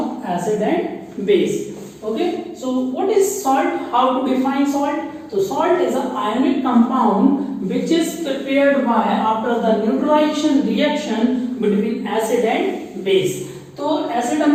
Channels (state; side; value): identical; both; correlation 1.00